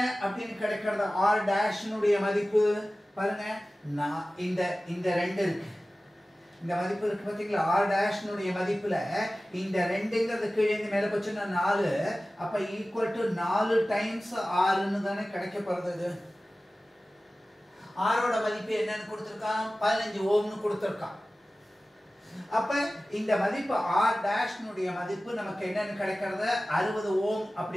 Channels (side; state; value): both; normal; correlation 0.96